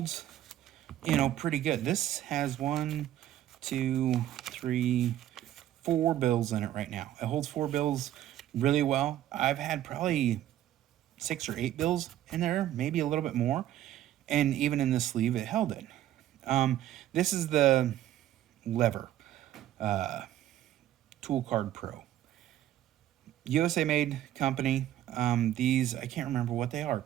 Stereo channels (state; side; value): quieter; left; 12.6 dB